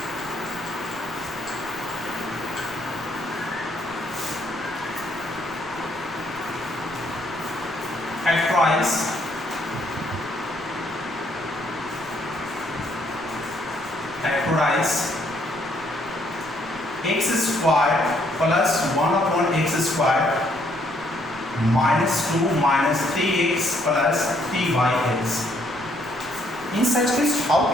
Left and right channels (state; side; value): noise; right; rumble, 23 dB below the sound